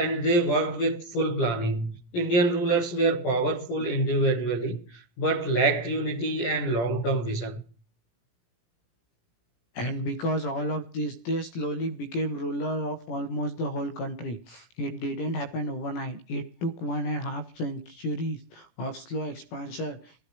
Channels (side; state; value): right; late; 17 ms